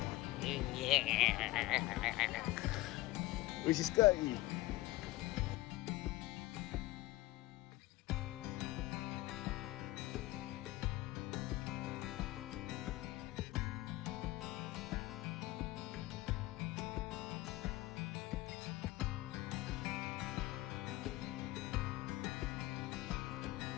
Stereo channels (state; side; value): quieter; right; 18.2 dB